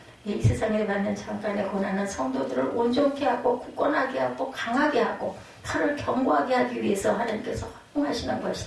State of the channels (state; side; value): identical; both; correlation 1.00